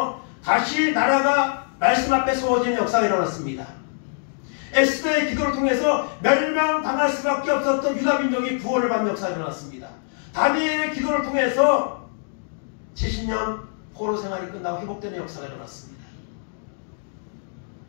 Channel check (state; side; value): silent; right; digital silence